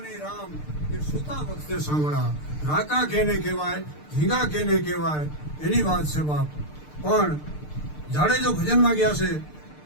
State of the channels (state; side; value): late; right; 6.7 ms